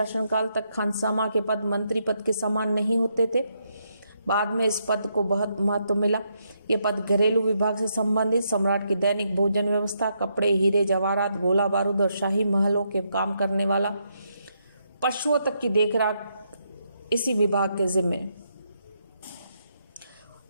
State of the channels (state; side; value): inverted; both; correlation -0.78